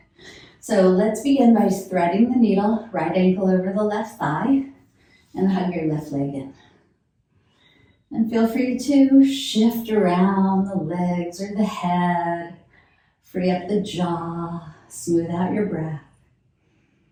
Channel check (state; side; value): identical; both; correlation 1.00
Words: So let's begin by threading the needle, right ankle over the left thigh, and hug your left leg in. And feel free to shift around the legs or the head, free up the jaw, smooth out your breath.